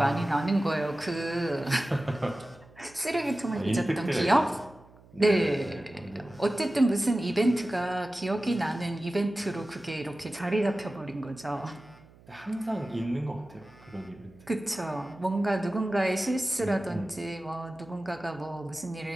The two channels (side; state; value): right; noise; hum, 25 dB below the sound